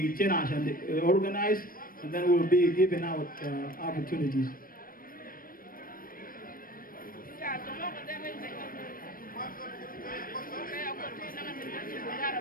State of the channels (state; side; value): late; right; 0.41 ms